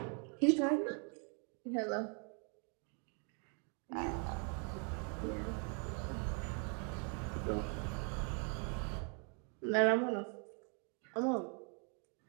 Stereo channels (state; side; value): quieter; left; 38.4 dB